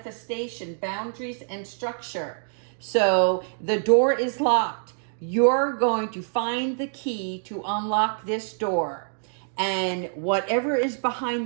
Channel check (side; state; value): left; silent; digital silence